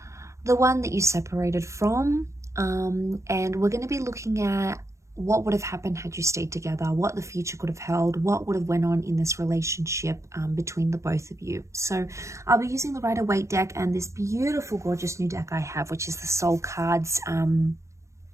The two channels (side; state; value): left; late; 0.14 ms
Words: the one that you separated from. And we're going to be looking at what would have happened had you stayed together, what the future could have held, what would have went on in this relationship between the both of you. So I'll be using the Rider-Waite deck and this beautiful, gorgeous new deck I have, which is the Soul Cards